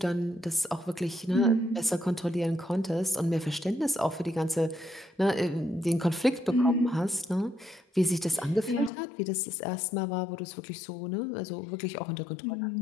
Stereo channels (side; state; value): right; drops out; at 8.9 s